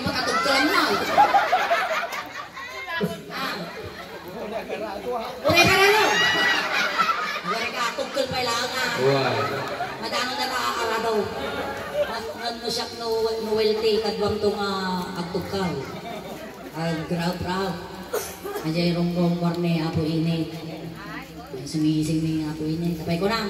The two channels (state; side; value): identical; both; correlation 1.00